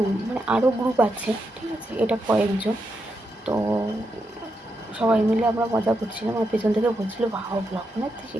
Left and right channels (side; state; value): both; normal; correlation 0.84